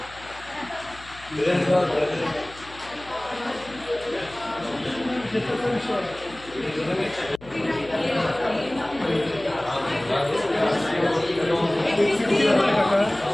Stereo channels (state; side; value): noise; left; hum, 20 dB below the sound